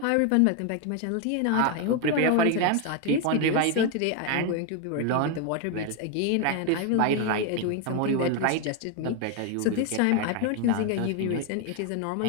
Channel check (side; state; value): both; different; correlation 0.01